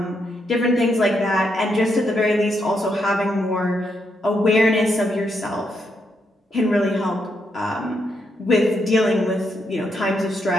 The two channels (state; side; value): normal; both; correlation 0.79